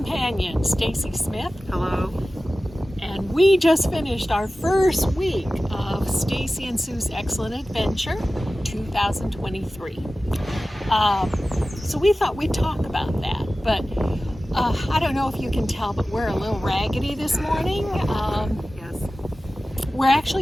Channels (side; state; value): both; normal; correlation 0.96